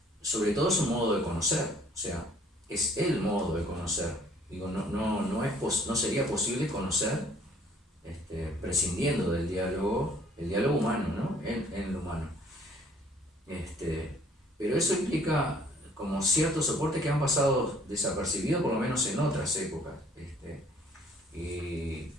sobre todo es un modo de conocer, o sea, es el modo de conocer. Digo, no sería posible conocer prescindiendo del diálogo, el diálogo humano, ¿no? En lo humano. Pero eso implica como ciertos soportes que han pasado desapercibidos, por lo menos en otras épocas. Y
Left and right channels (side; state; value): both; normal; correlation 0.58